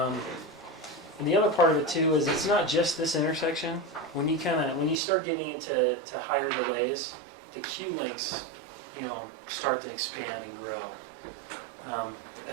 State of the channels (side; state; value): left; drops out; at 5.0 s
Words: the other part of it too is it's not just this intersection. When you start getting into higher delays, the queue lengths, start to expand and grow.